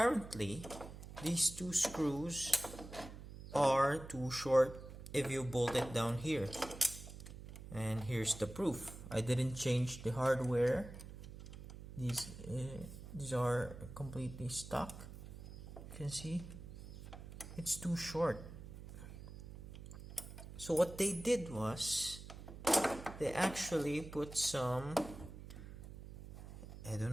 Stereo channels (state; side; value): noise; right; hum, 13 dB below the sound